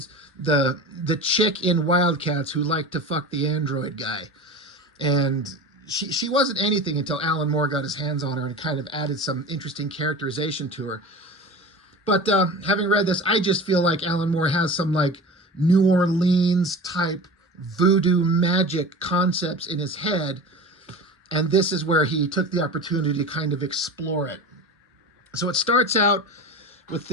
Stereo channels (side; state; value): both; normal; correlation 0.33